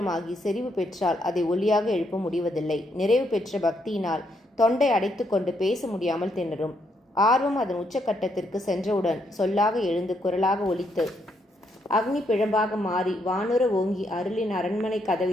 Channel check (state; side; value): normal; both; correlation 0.76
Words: செறிவு பெற்றால் அதை ஒலியாக எழுப்ப முடிவதில்லை. நிறைவு பெற்ற பக்தியினால் தொண்டை அடைத்து கொண்டு பேச முடியாமல் திணறும். ஆர்வம் அதன் உச்சக்கட்டத்திற்கு சென்றவுடன் சொல்லாக எழுந்து குரலாக ஒலித்து அக்னி பிழம்பாக மாறி வானுர ஓங்கி அருளின் அரண்மனை